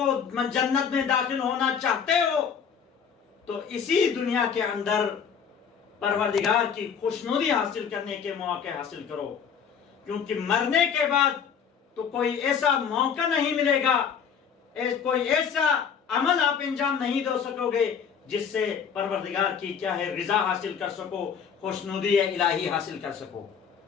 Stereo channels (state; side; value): quieter; right; 7.1 dB